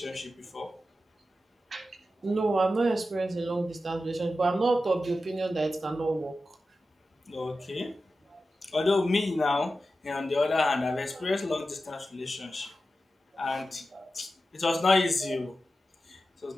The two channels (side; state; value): both; normal; correlation 0.92